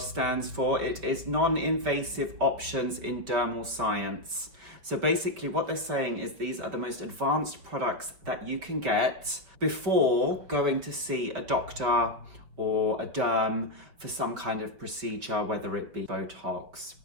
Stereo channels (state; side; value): late; left; 5.2 ms